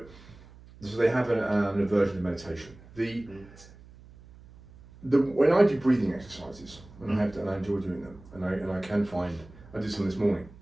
so they have an aversion to meditation. When I do breathing exercises, and I enjoy doing them, and I can find I did some this morning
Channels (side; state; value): right; noise; hum, 21 dB below the sound